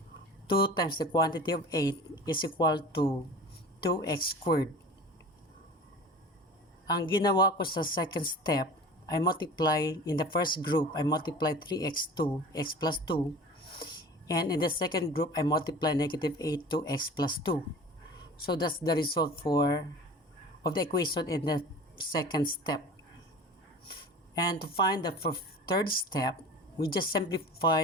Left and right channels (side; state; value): both; normal; correlation 0.39